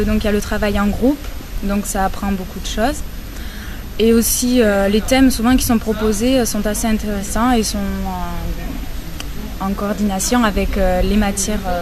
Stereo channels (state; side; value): identical; both; correlation 1.00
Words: donc il y a le travail en groupe, donc ça apprend beaucoup de choses. Et aussi les thèmes souvent qui sont proposés sont assez intéressants et sont en coordination avec les matières